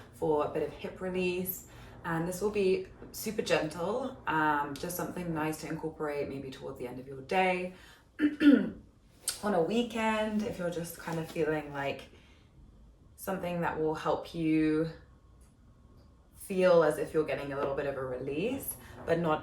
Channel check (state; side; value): identical; both; correlation 1.00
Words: for a bit of hip release. And this will be super gentle, just something nice to incorporate maybe towards the end of your day, on a weekend, if you're just kind of feeling like something that will help you feel as if you're getting a little bit of a release, but